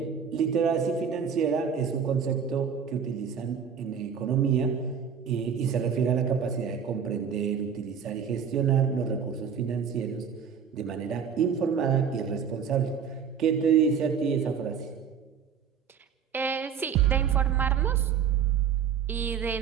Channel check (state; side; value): quieter; left; 7.2 dB